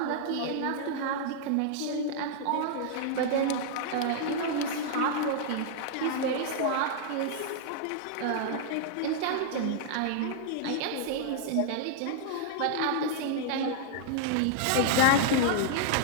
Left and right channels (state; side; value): different; both; correlation -0.01